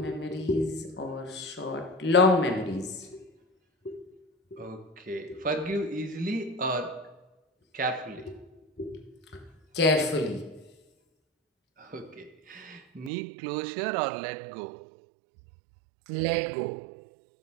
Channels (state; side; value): drops out; left; at 13.1 s